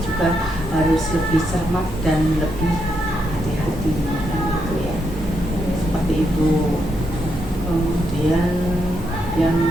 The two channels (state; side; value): normal; both; correlation 0.80